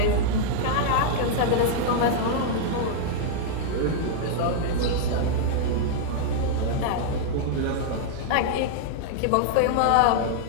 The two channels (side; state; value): both; different; correlation -0.01